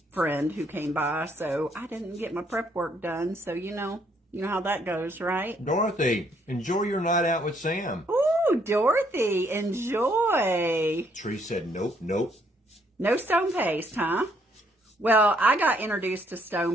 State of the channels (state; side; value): normal; both; correlation 0.69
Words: friend who came by, so I didn't get my prep work done. So, you know how that goes, right? Dorothy, enjoy your night out with Sam. Ooh, Dorothy, enjoy. Tree said nope, nope. No stone paste, huh? Well, I got introduced to